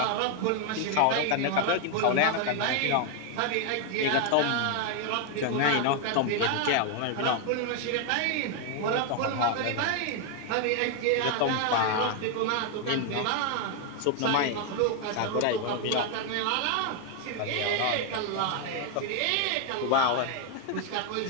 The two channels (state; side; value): different; both; correlation 0.01